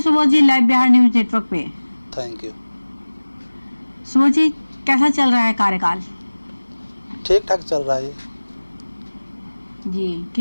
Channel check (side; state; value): both; inverted; correlation -1.00